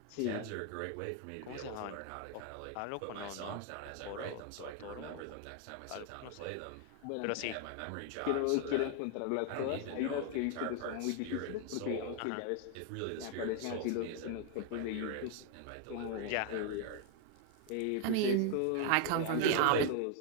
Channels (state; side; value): different; both; correlation 0.00